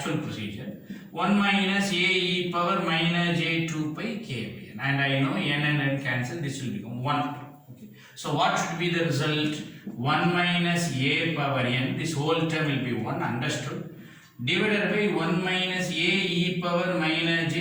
procedure. 1 minus a e power minus j 2 pi k by n. And I know n and n cancel, this will become 1. Okay. So what should be the result? 1 minus a power n, this whole term will be 1, understood, divided by 1 minus a e power minus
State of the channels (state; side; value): identical; both; correlation 1.00